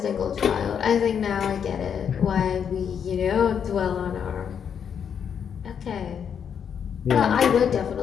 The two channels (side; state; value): right; quieter; 7.7 dB